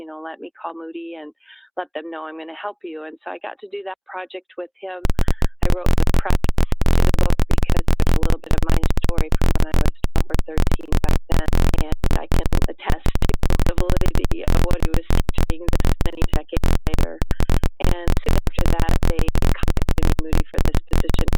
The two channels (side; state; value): both; identical; correlation 1.00